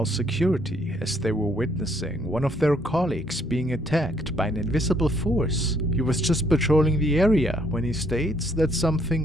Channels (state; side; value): normal; both; correlation 0.68